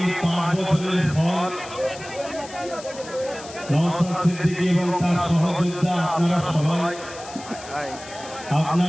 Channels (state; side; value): noise; left; hiss, 16 dB below the sound